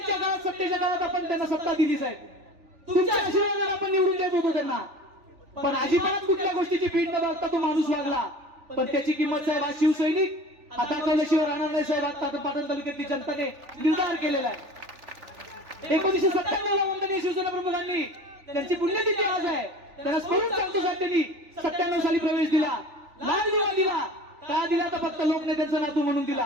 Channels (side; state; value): left; late; 3.4 ms